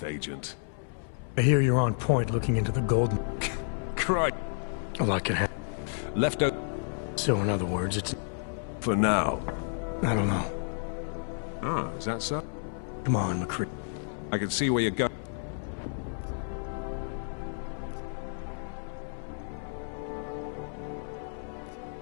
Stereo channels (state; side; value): silent; right; 57 dB below the other